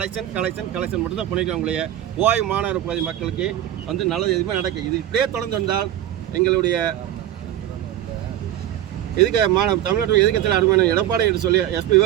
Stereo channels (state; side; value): quieter; left; 12.2 dB